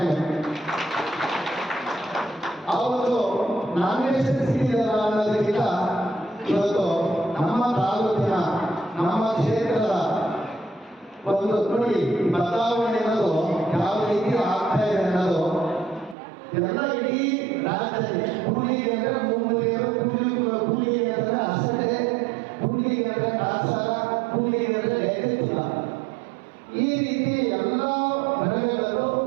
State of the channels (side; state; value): left; drops out; at 16.2 s